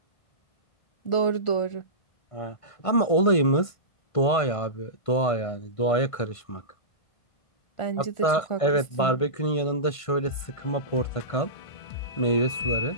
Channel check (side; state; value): right; late; 1.5 ms